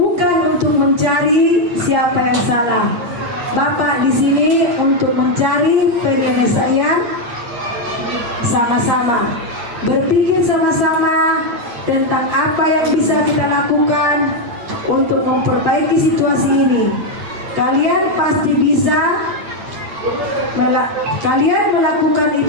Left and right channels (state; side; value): late; left; 8.5 ms